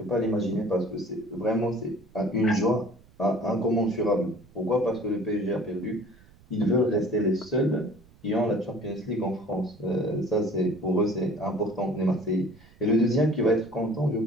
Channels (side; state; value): right; noise; rumble, 26 dB below the sound